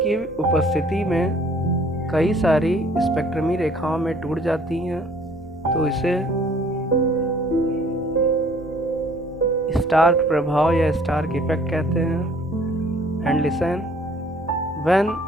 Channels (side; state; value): both; normal; correlation 0.56